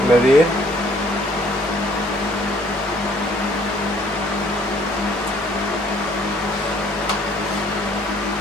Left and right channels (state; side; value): normal; both; correlation 0.60